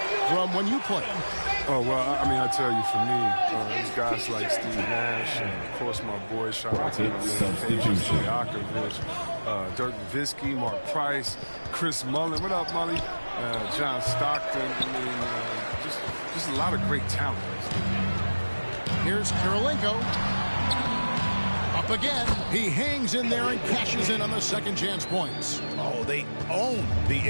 from when you played? Oh, well, I mean, I tell you, for me, there's guys like Steve Nash, and of course my boy, shout out to Stojakovic, Dirk Nowitzki, Mark Price, Chris Mullin. What up, Mully? John Stockton. I mean, just a lot of great talent. Here's Kirilenko. Up again. He hangs in there and cashes in on the second chance points. Oh, they own the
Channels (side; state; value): both; inverted; correlation -1.00